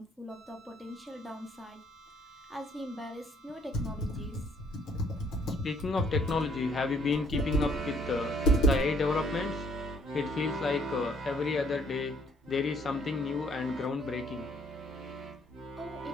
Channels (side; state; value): both; normal; correlation 0.64